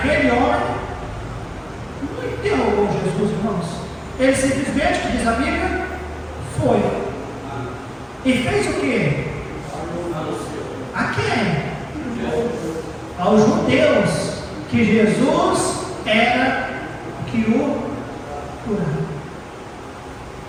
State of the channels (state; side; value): identical; both; correlation 1.00